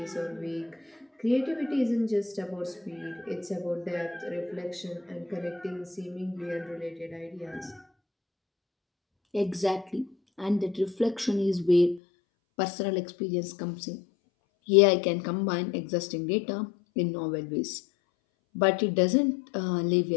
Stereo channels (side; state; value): right; drops out; at 12.0 s